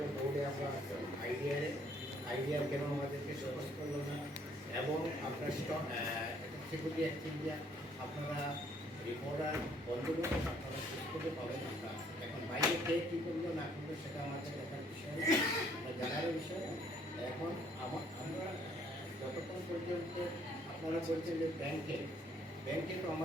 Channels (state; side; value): normal; both; correlation 0.64